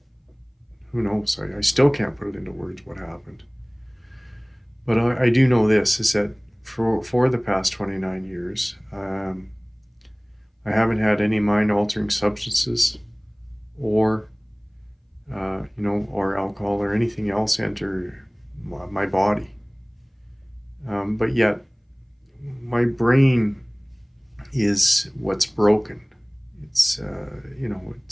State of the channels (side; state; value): both; identical; correlation 1.00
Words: who knows? I still can't put it into words what happened. But I do know this is that for the past 29 years, I haven't had any mind altering substances or or alcohol or anything else enter my body. But yet, my brain is what's broken. It's